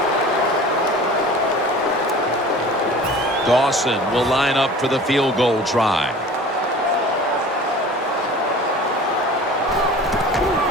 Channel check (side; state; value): both; normal; correlation 0.42